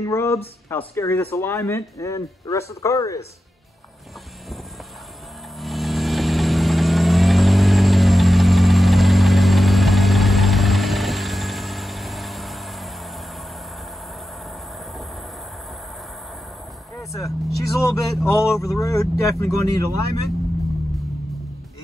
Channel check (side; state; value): both; normal; correlation 0.90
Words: rubs, how scary this alignment and the rest of the car is. Alright, so she's a little bit all over the road, definitely going to need alignment.